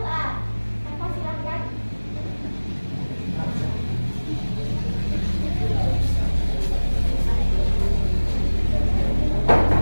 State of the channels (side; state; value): both; inverted; correlation -1.00